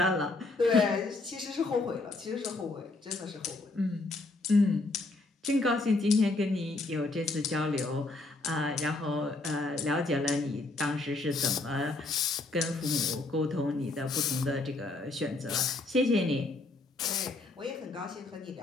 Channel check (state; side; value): quieter; right; 3.2 dB